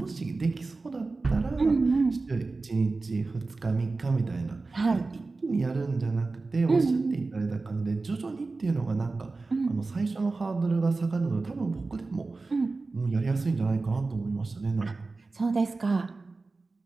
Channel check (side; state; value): left; quieter; 3.7 dB